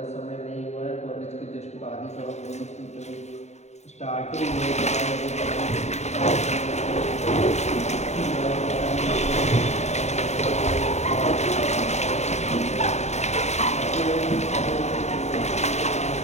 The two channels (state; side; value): late; right; 0.32 ms